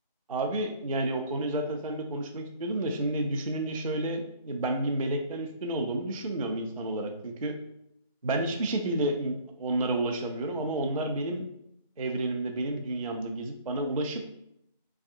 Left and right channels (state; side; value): inverted; both; correlation -0.52